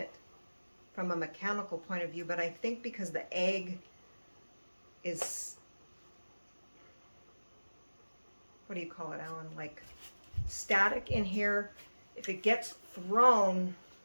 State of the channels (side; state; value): both; inverted; correlation -1.00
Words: from a mechanical point of view, but I think because the egg is, what do you call it, Alan? Like static in here. if it gets thrown,